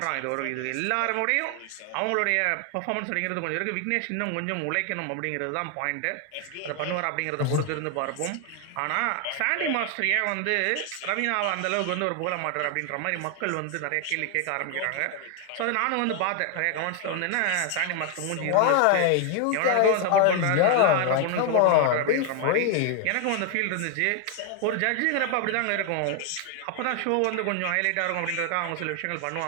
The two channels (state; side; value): different; both; correlation 0.00